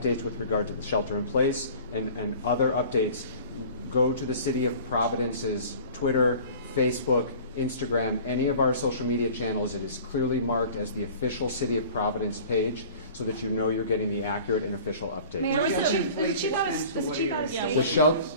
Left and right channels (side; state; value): both; inverted; correlation -0.44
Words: with regard to the shelter in place and other updates, go to the City of Providence's Twitter, Facebook, Instagram, any of our social media channels. It is clearly marked as the official City of Providence page so that you know you're getting the accurate and official update. Mayor,